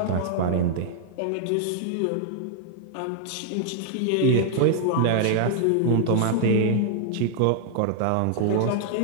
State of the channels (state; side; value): different; both; correlation 0.00